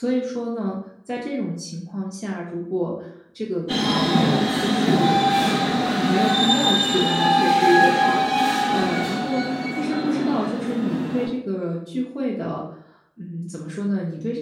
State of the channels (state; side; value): identical; both; correlation 1.00